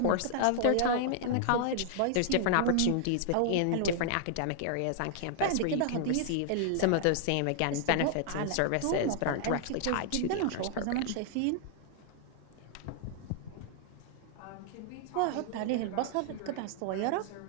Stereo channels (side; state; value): both; different; correlation 0.00